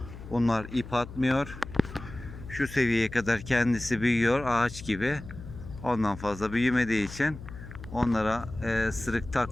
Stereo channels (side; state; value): left; noise; hum, 13 dB below the sound